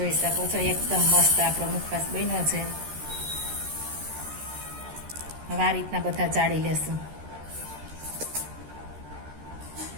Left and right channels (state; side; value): late; left; 13 ms